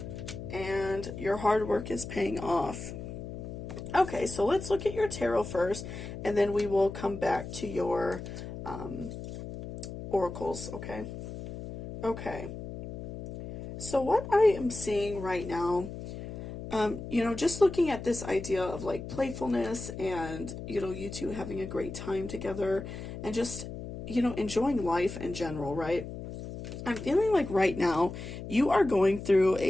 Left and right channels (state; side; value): noise; left; hum, 9 dB below the sound